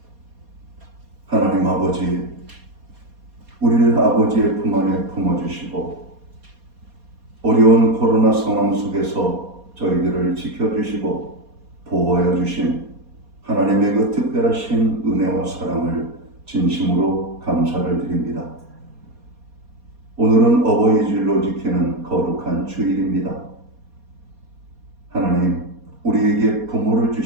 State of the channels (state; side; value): late; left; 4.2 ms